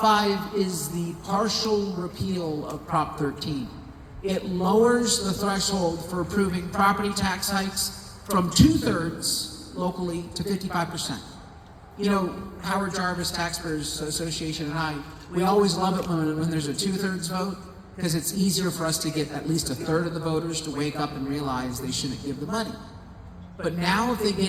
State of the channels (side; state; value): both; identical; correlation 1.00